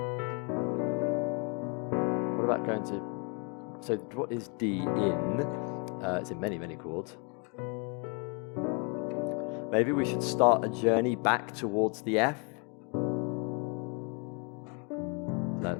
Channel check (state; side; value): quieter; right; 34.4 dB